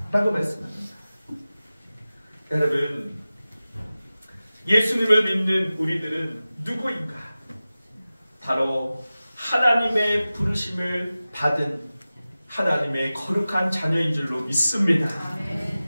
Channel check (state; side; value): inverted; both; correlation -0.96